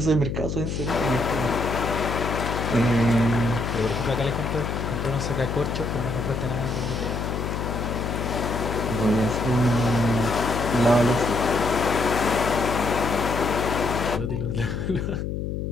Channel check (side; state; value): left; noise; hum, 3 dB below the sound